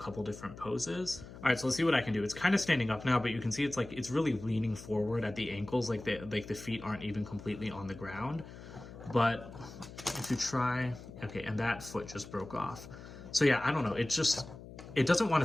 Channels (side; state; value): left; noise; hum, 15 dB below the sound